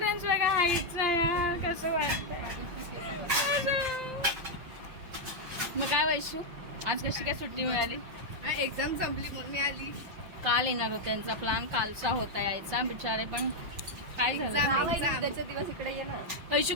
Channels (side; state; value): left; late; 5.8 ms